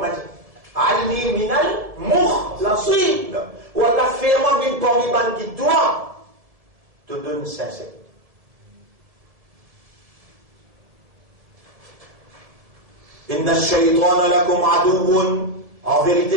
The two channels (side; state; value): left; late; 1.7 ms